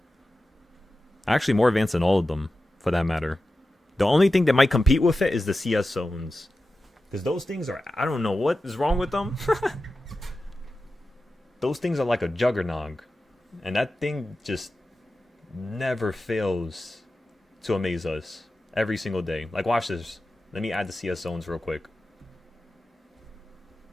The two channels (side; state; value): both; normal; correlation 0.93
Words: Actually, more advanced than all of them, for that matter. The only thing that might compete with it is the CS zones. Because those things are, I don't know what is wrong with them. Those things are like a juggernaut. And that thing just never fails to amaze us every single day. Like, watch this. Let me add the CS zones real quick.